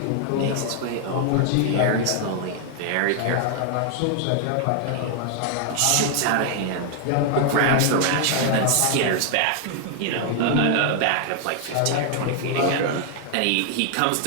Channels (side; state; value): both; different; correlation 0.00